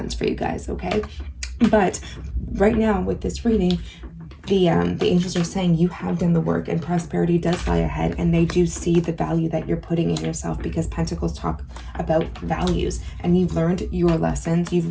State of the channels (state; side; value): identical; both; correlation 1.00